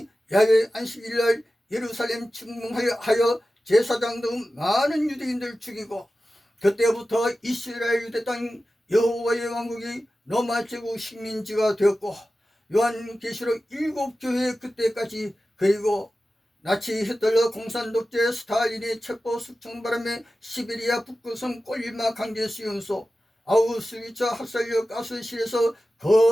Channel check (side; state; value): both; normal; correlation 0.94